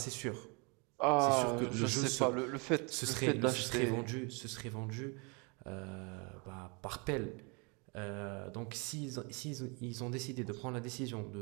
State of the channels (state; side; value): quieter; left; 32.0 dB